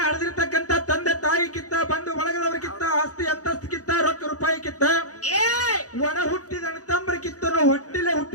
ಹಡೆದಿರ್ತಕ್ಕಂಥ ತಂದೆ ತಾಯಿ ಕಿತ್ತ ಬಂದು ಒಳಗದವ್ರಕ್ಕಿತ್ತ ಆಸ್ತಿ ಅಂತಸ್ತಿಕ್ಕಿತ್ತ ರೊಕ್ಕ ರೂಪಾಯಿ ಕಿತ್ತ ಒಡ ಹುಟ್ಟಿದ ತಮ್ಮರ ಕಿತ್ತನು ಹೊಟ್ಟಿಲೆ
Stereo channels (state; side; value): late; right; 0.67 ms